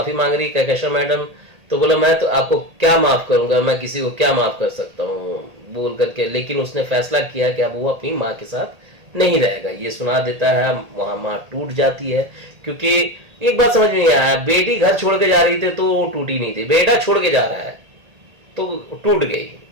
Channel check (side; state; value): left; late; 1.8 ms